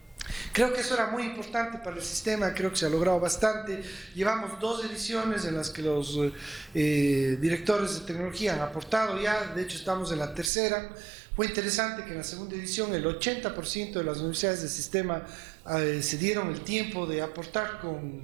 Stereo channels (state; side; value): drops out; left; at 10.5 s